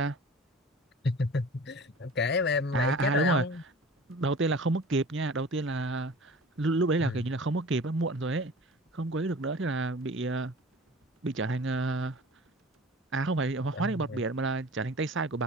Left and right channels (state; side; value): normal; both; correlation 0.41